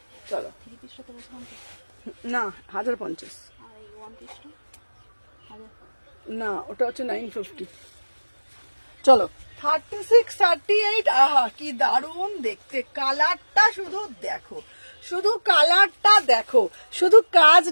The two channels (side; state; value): both; inverted; correlation -1.00